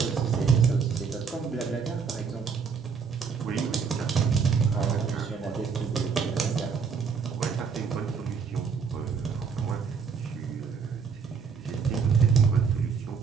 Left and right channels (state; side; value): quieter; left; 5.9 dB